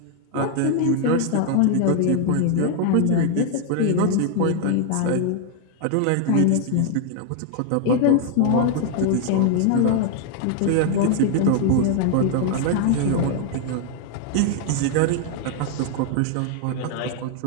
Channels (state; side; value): different; both; correlation 0.00